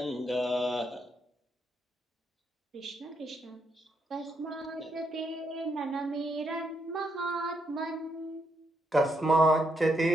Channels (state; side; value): normal; both; correlation 0.78